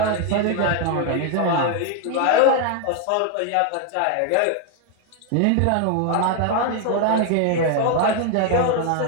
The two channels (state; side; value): different; both; correlation 0.01